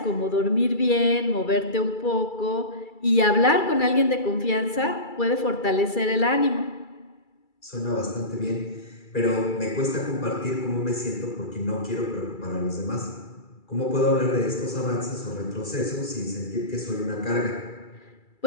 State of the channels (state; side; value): late; right; 2.3 ms